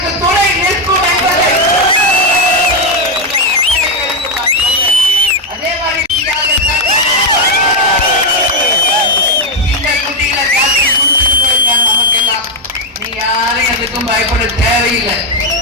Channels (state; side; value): normal; both; correlation 0.05